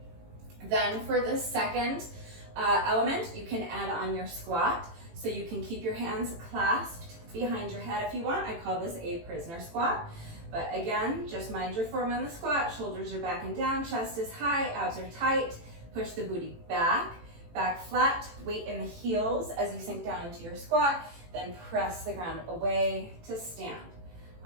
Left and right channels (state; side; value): late; left; 18 ms